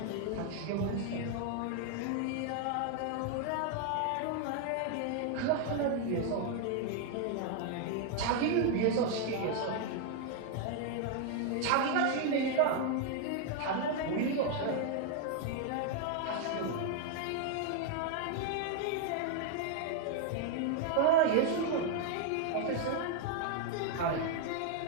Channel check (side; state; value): both; different; correlation 0.00